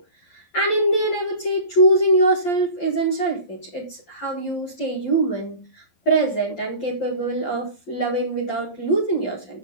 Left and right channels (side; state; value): right; late; 11 ms